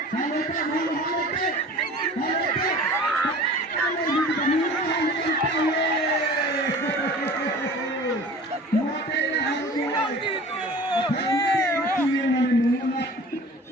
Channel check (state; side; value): normal; both; correlation 0.42